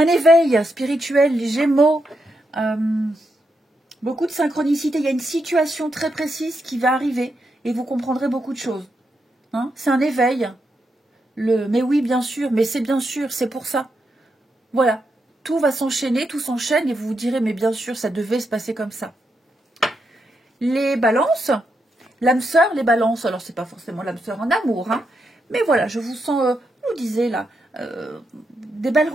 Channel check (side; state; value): both; normal; correlation 0.83